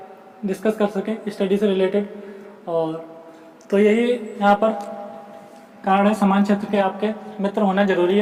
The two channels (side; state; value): both; identical; correlation 1.00